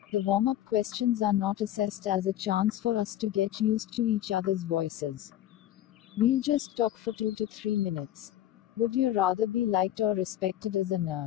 The warm-up questions are not assessed as a chance for us to get used to each other's voices. We'll just talk for 2 to 3 minutes. Would you rather be liked or respected as a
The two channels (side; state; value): right; quieter; 12.6 dB